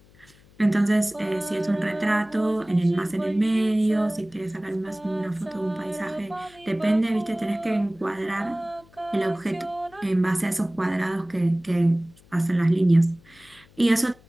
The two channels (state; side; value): noise; left; hum, 27 dB below the sound